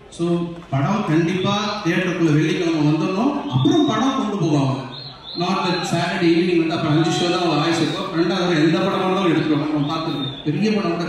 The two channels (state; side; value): identical; both; correlation 1.00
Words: ஸோ படம் கண்டிப்பா தியேட்டருக்குள்ள வெள்ளிக்கிழமை வந்துடணும், அப்புறம் படம் கொண்டு போவாங்க. நாட் தட் சாட்டர்டே ஈவினிங் வந்து அப்புறம் 5 ஷோ தான் வாய்ஸ் இருக்கும், 2வது எந்த படம் இருந்தாலும் எடுத்துருவாங்க. நம்ம பார்த்துருக்கேன், பெரிய படம் கூட